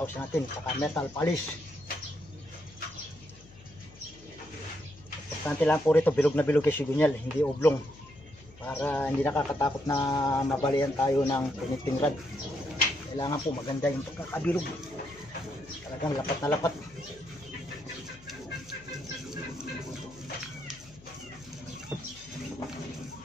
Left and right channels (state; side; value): noise; left; hum, 22 dB below the sound